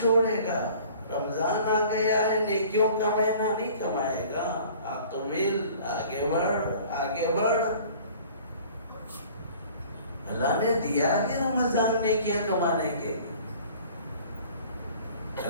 گا؟ رمضان آ گیا ہے، نیکیوں کا مہینہ نہیں کمائے گا. اقبل، آگے بڑھ آگے بڑھ. اللہ نے دیا کہ رمضان نیکیاں کمانے کے.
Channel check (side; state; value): both; inverted; correlation -0.49